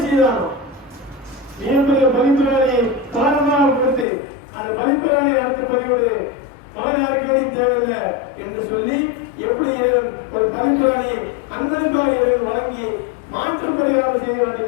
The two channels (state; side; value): drops out; right; at 4.0 s